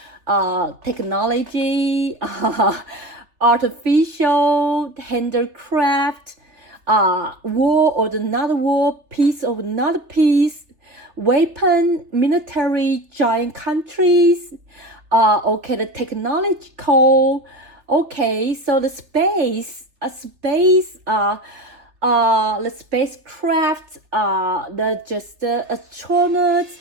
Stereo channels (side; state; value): left; late; 3.3 ms